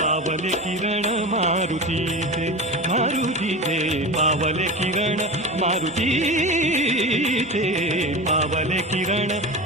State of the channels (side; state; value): both; normal; correlation 0.27